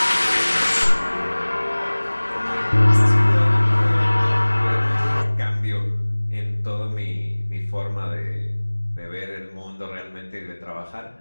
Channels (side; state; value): both; inverted; correlation -1.00